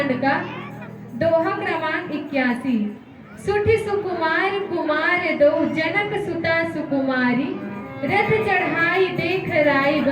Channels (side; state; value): both; identical; correlation 1.00